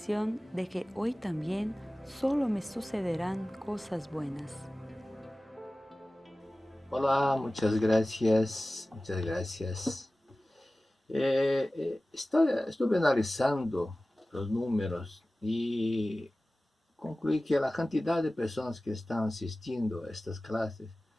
de que hoy también solo me sucederán cosas buenas. Hola, muchas gracias, muchas gracias. Estuve analizando los números y concluí que la cantidad de personas que están asistiendo a estas clases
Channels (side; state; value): both; normal; correlation 0.97